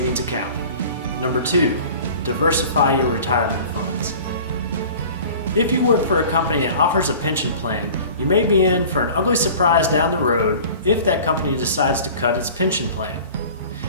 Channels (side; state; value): both; inverted; correlation -0.43